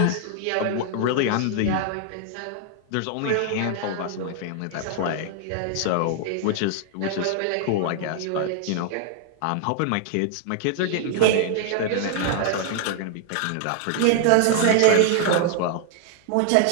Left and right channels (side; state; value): both; different; correlation 0.00